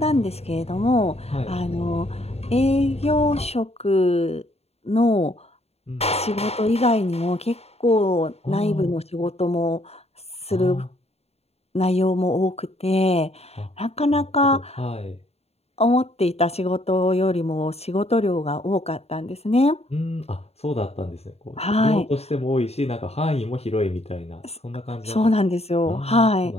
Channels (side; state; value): right; late; 0.30 ms